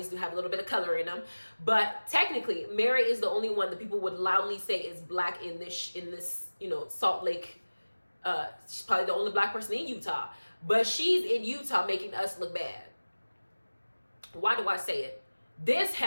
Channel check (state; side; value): inverted; both; correlation -1.00